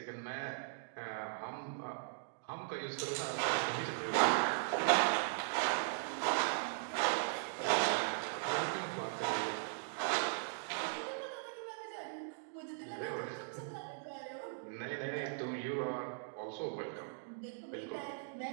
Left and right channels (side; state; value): left; silent; digital silence